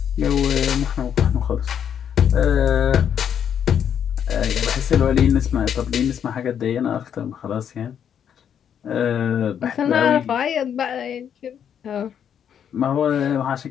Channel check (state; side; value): quieter; right; 8.6 dB